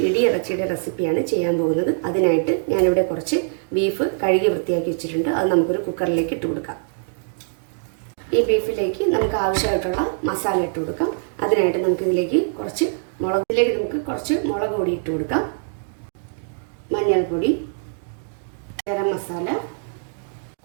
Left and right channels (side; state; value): left; silent; digital silence